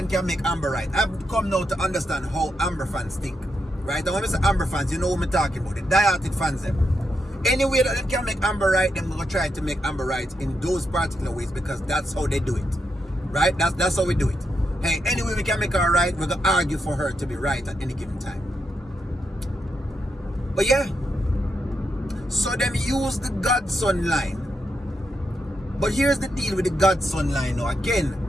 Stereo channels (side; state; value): both; normal; correlation 0.84